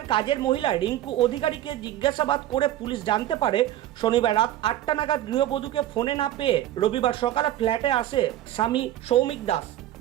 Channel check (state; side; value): quieter; left; 13.1 dB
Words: কাজের মহিলা রিঙ্কু অধিকারীকে জিজ্ঞাসাবাদ করে পুলিশ জানতে পারে শনিবার রাত 8টা নাগাদ গৃহবধূকে ফোনে না পেয়ে রবিবার সকালে ফ্ল্যাটে আসে স্বামী সৌমিক দাস।